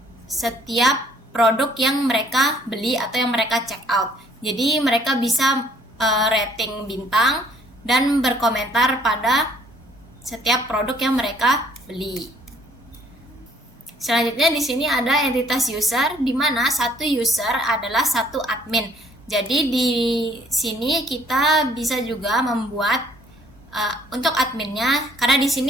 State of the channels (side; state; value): both; normal; correlation 0.61